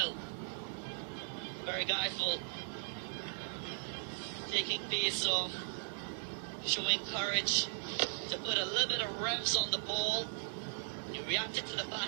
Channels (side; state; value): left; silent; digital silence